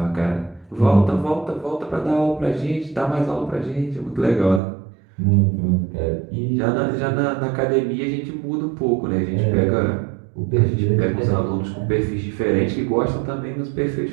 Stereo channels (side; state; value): left; drops out; at 4.6 s